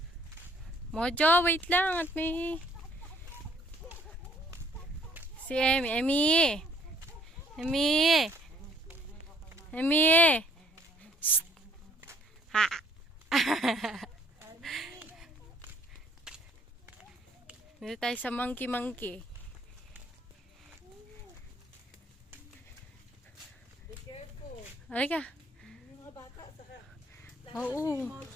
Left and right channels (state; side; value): normal; both; correlation 0.63